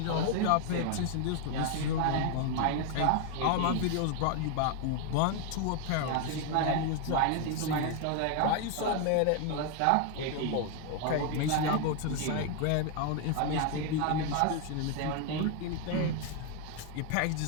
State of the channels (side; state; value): both; different; correlation 0.00